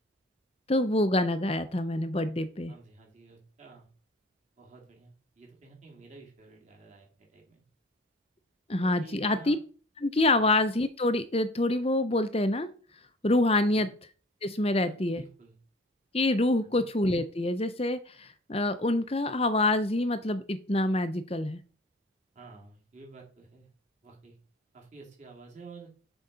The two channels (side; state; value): both; normal; correlation 0.45